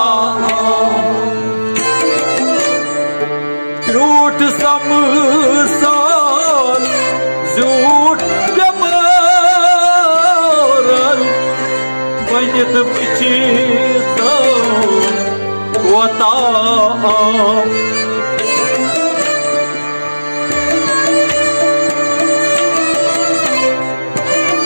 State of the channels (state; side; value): inverted; both; correlation -1.00